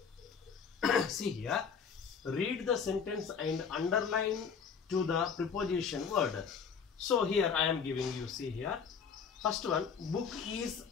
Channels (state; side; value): quieter; right; 6.3 dB